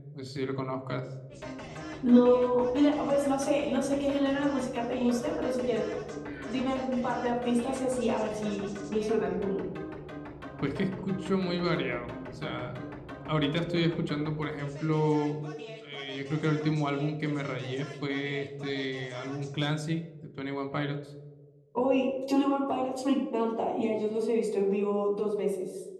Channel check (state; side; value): identical; both; correlation 1.00